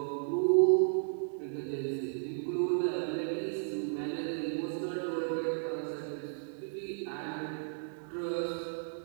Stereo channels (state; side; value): silent; left; digital silence